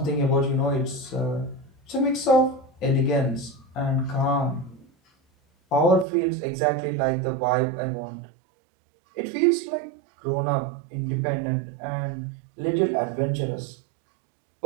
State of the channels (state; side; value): drops out; left; at 6.1 s